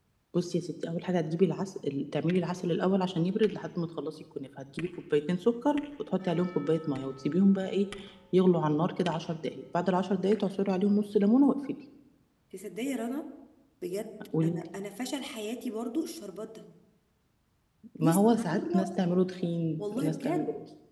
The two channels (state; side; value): identical; both; correlation 1.00